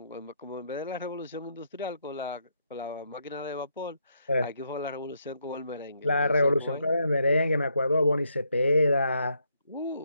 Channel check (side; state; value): both; inverted; correlation -0.76